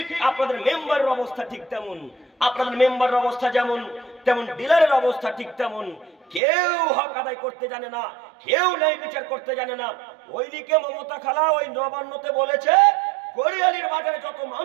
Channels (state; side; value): drops out; left; at 6.4 s